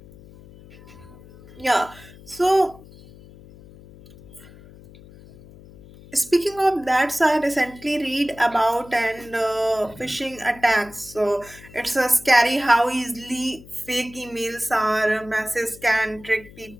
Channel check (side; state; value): left; noise; hum, 21 dB below the sound